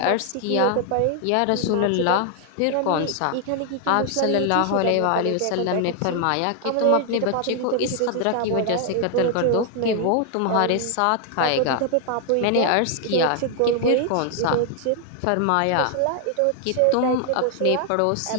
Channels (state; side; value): different; both; correlation 0.00